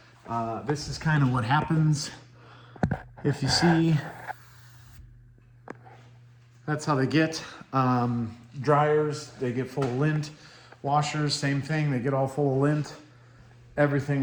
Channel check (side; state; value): both; identical; correlation 1.00